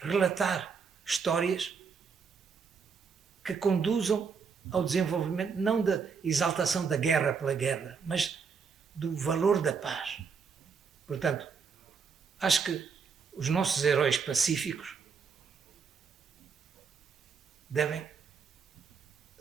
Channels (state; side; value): quieter; left; 5.8 dB